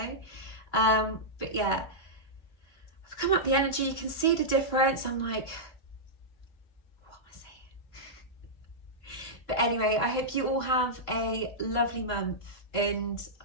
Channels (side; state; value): right; late; 2.9 ms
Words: But yeah, I've come up the energy, you can see the difference. I'm like, what am I saying? But anyway, I hope you all have a lovely month, and